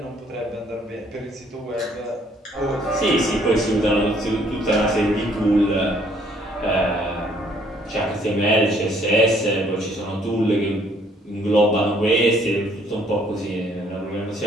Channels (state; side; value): normal; both; correlation 0.63